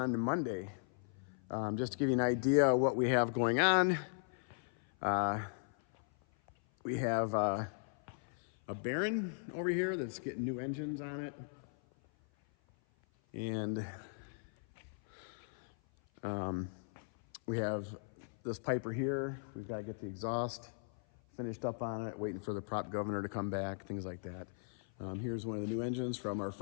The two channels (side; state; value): right; silent; 53 dB below the other